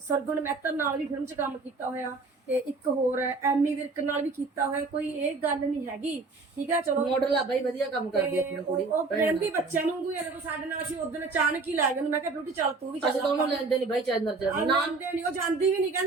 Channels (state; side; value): quieter; left; 3.9 dB